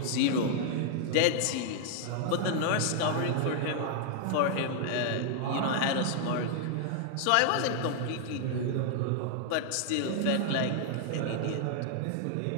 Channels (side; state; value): both; different; correlation 0.00